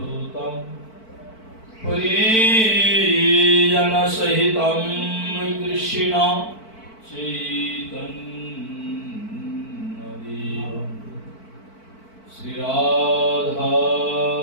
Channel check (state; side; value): late; right; 4.5 ms